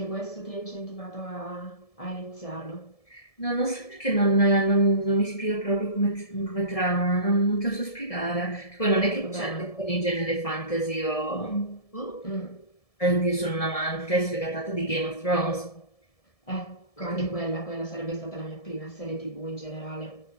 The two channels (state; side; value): late; right; 1.7 ms